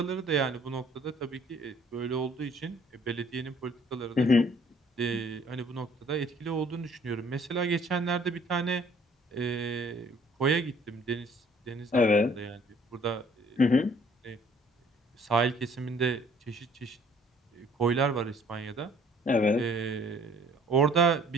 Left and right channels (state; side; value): normal; both; correlation 0.58